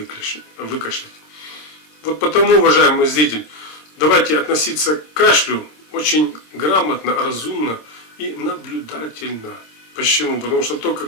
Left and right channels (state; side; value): late; right; 26 ms